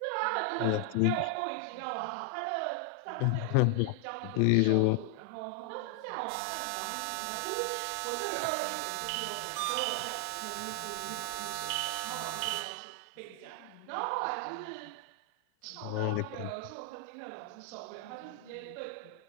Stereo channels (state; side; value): different; both; correlation 0.00